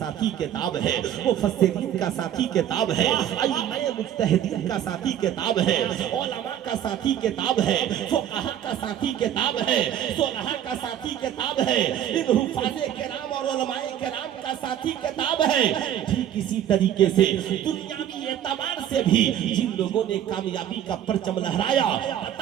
کتاب ہے, مفسرین کا ساتھی کتاب ہے, ائمہ مجتہدین کا ساتھی کتاب ہے, علماء کا ساتھی کتاب ہے, فقہاء کا ساتھی کتاب ہے, صلحاء کا ساتھی کتاب ہے, ان حفاظ کرام اور علماء کرام کا ساتھی کتاب ہے. ٹھیک اسی طریقے سے دنیاوی اعتبار سے بھی جن لوگوں نے کامیابی کا پرچم لہرایا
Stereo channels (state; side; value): quieter; left; 10.6 dB